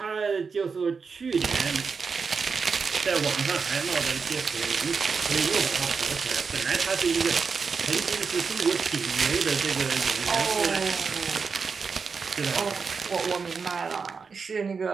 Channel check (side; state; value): left; quieter; 5.3 dB